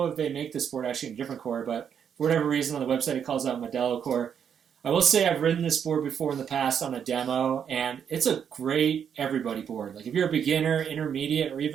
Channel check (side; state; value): left; quieter; 8.0 dB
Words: if they make this board actually in a different core, but for whatever reason on the website it calls out Modelo core. I will say I've ridden this board before in the past on a demo, and it's a great everybody board. If you're a beginner, intermediate, or